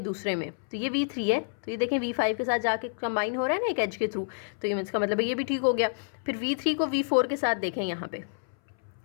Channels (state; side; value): silent; right; 59 dB below the other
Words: दूसरे में, तो ये V3 है, तो ये देखें V5 के साथ जाके कंबाइन हो रहा है ना एक एज के थ्रू, तो ये इसका मतलब है ये भी ठीक हो गया। फिर V3 को V4 के साथ देखें, यहाँ पे